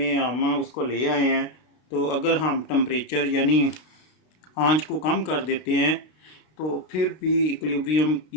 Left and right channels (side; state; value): right; late; 32 ms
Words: हम उसको ले आए हैं, तो अगर हम टेम्परेचर यानी आंच को कम कर देते हैं तो फिर भी इक्विलिब्रियम